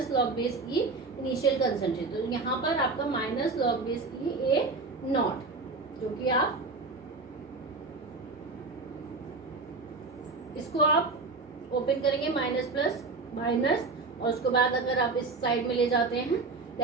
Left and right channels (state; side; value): quieter; left; 3.9 dB